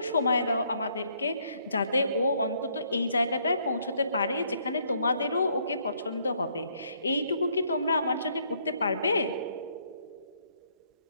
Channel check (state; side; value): inverted; both; correlation -0.69